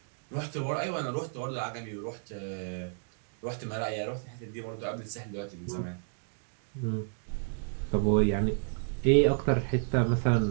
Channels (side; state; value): left; silent; digital silence